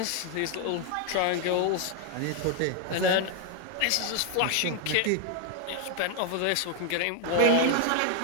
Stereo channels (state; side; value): different; both; correlation 0.00